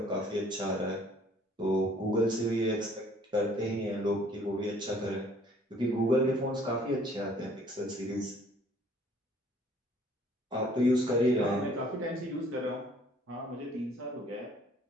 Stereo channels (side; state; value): both; normal; correlation 0.58